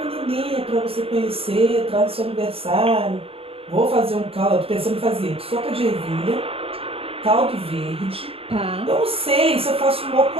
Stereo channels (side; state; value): left; late; 0.27 ms